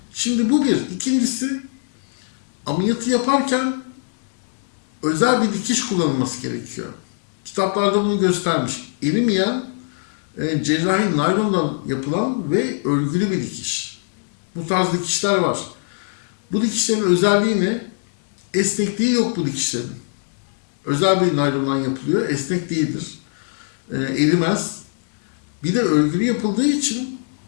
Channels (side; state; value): right; silent; 65 dB below the other